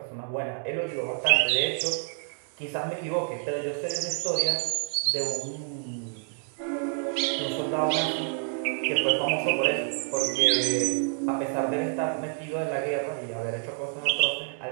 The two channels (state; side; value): silent; left; 59 dB below the other